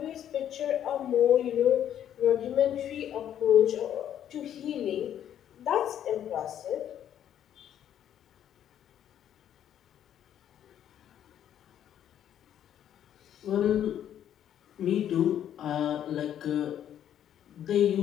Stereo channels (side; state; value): right; quieter; 10.3 dB